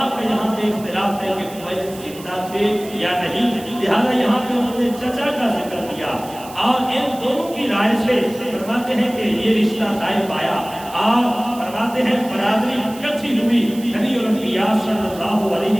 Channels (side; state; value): right; noise; hiss, 18 dB below the sound